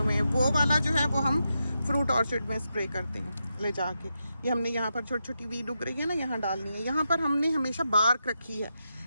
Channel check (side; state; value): both; inverted; correlation -0.86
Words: हैं, वो वाला जो है वो हम फ्रूट ऑर्चिड में स्प्रे करते हैं ले जाके। ये हमने यहाँ पर छोटी छोटी वीड उग रही है ना, यहाँ डालनी है। यहाँ पर हमने हमेशा बार्क रखी है,